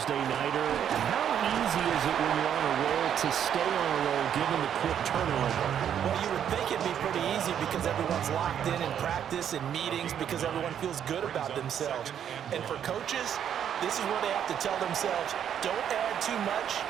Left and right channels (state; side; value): quieter; left; 9.2 dB